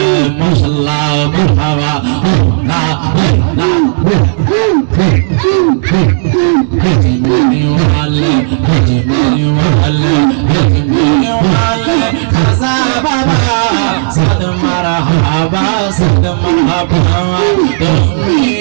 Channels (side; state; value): left; silent; digital silence